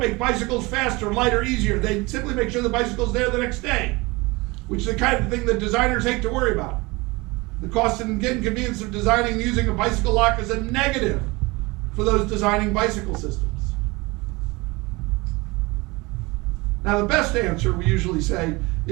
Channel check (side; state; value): left; quieter; 23.9 dB